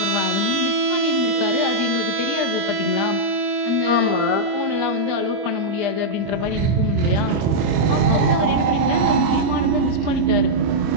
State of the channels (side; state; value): left; late; 25 ms